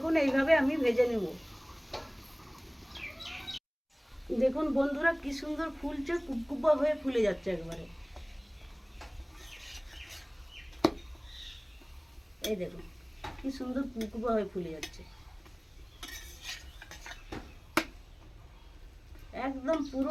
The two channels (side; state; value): both; identical; correlation 1.00